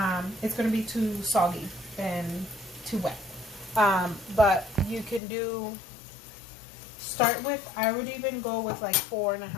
it's going to be too soggy and too wet. But you can start with, I would even go with like 4.5.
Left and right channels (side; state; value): right; drops out; at 5.2 s